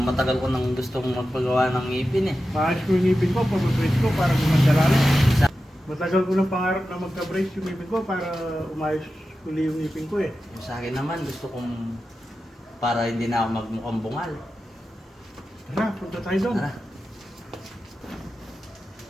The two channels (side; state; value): both; normal; correlation 0.92